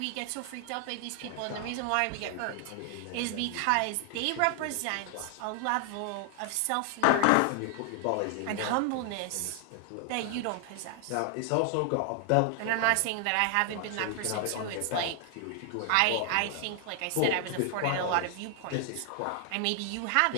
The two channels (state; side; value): different; both; correlation 0.00